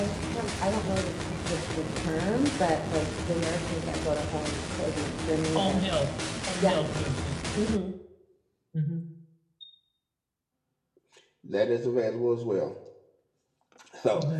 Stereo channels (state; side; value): identical; both; correlation 1.00